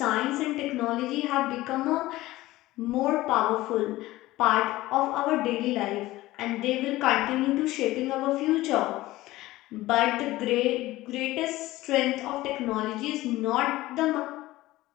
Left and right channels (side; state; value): right; quieter; 17.5 dB